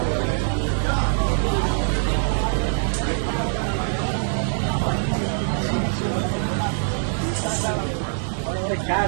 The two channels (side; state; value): left; silent; digital silence